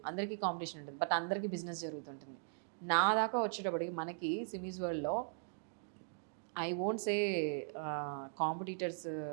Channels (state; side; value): silent; left; digital silence